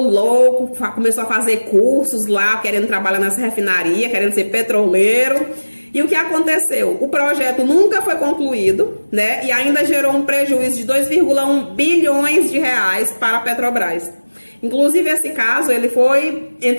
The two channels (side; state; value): both; inverted; correlation -1.00